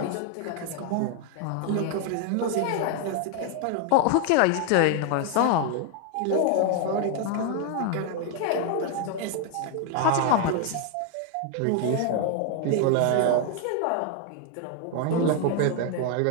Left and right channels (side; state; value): both; different; correlation 0.01